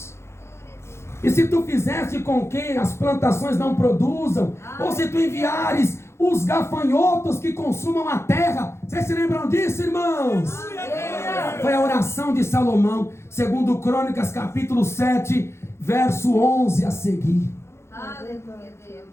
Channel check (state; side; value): late; right; 0.13 ms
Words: e se tu fizeste com que as plantações não produzam, ou se tu enviares os gafanhotos que consumam a terra. Vocês se lembram disso, irmãos? Foi a oração de Salomão, segundo Crônicas capítulo 7, verso 11 a seguir. Aleluia, Deus.